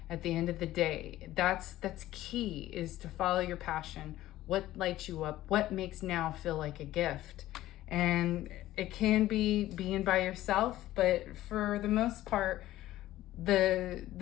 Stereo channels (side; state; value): right; quieter; 15.0 dB